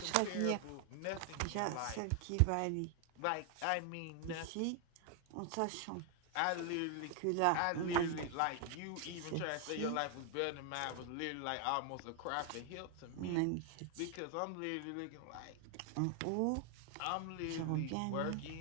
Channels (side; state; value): both; different; correlation 0.00